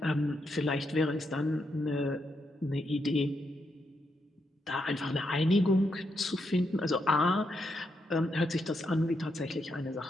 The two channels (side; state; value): both; normal; correlation 0.81